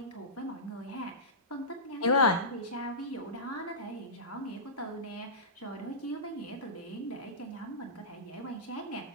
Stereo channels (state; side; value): normal; both; correlation -0.19